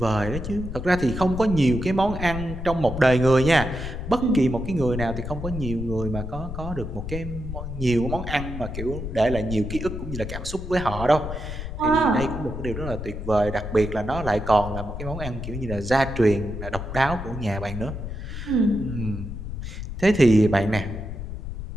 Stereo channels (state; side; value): noise; left; rumble, 7 dB below the sound